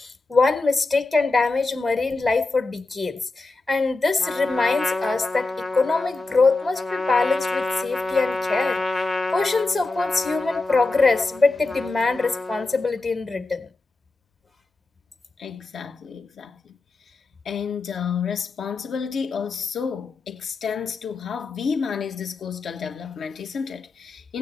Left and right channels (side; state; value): right; quieter; 3.5 dB